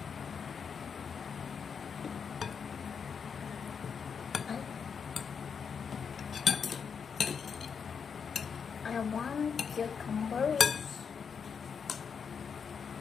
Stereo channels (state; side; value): quieter; right; 6.4 dB